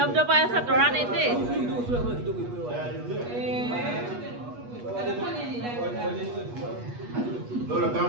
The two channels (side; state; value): left; late; 8.3 ms